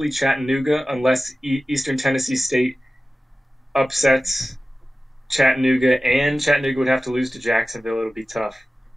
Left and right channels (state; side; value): normal; both; correlation 0.96